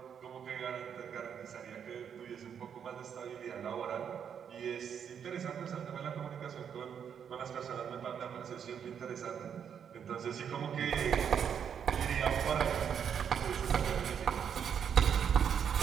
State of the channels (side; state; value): left; quieter; 7.9 dB